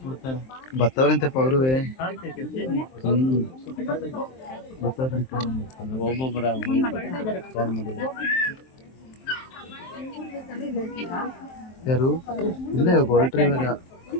ಬತ್ತವ್ರಂತೆಪ್ಪ ಅವರುವೆ. ಒಬ್ಬೊಬ್ಬರ ಯಾರು ಇಲ್ಲ, ಹೊರಟ್ರಿ ಇವಾಗ.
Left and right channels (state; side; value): late; right; 23 ms